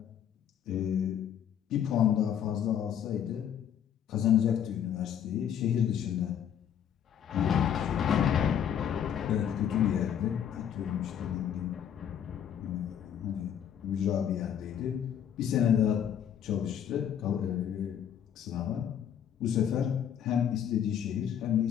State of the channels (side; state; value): right; quieter; 9.1 dB